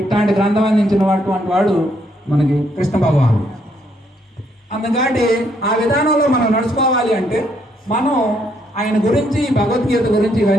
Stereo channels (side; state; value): both; normal; correlation 0.72